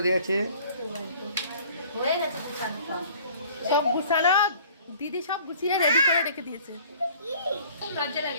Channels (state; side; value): inverted; both; correlation -0.51